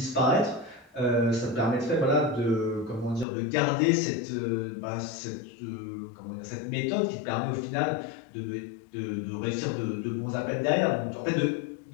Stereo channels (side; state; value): right; drops out; at 3.2 s